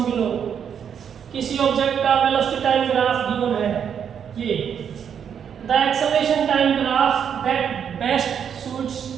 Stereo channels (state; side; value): quieter; left; 8.0 dB